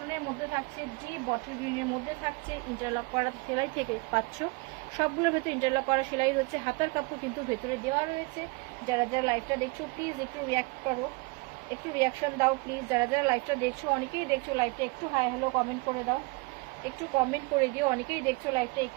মধ্যে থাকছে, ডিপ বটল গ্রিনের মধ্যে থাকছে, ইন্টারলক করা সেলাই থেকে পাচ্ছ, সবগুলোর ভেতরে ইন্টারলক করা সেলাই রয়েছে, হাতার কাপড় কিন্তু ভেতরে দেওয়া রয়েছে। যারা যারা লাইভটা দেখছো প্লিজ একটু রিয়াক্ট করো, একটু রিয়াকশন দাও প্লিজ, যারা যারা লাইভটা দেখছো, অনেকেই দেখছো লাইভটা, একটু হাই হ্যালো কমেন্ট করে দাও, একটু কমেন্ট করে দিও, অনেকেই দেখছো লাইভটা,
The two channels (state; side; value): quieter; left; 27.6 dB